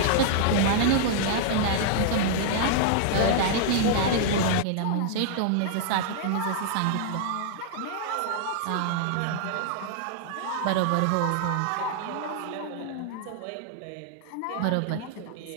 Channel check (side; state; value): both; different; correlation -0.01